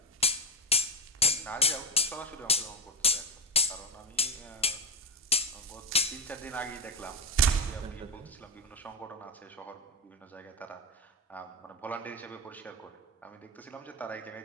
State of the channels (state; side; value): normal; both; correlation 0.13